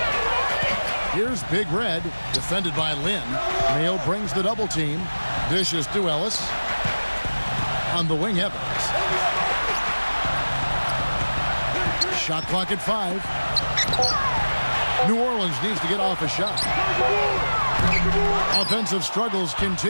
Here's Big Red, defended by Lin. Mayo brings the double team. Dishes to Ellis. On the wing, Evans. Shot clock at 5. New Orleans needs to get off a shot. Offensive struggles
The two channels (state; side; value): inverted; both; correlation -1.00